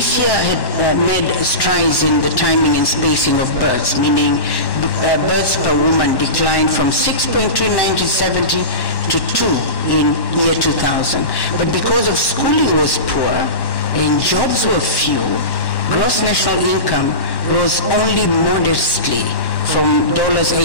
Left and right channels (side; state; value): right; late; 1.1 ms